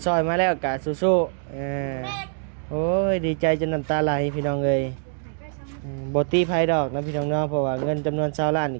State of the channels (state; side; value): silent; left; digital silence